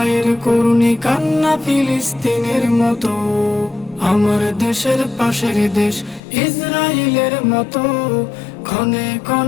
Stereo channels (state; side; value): drops out; right; at 6.2 s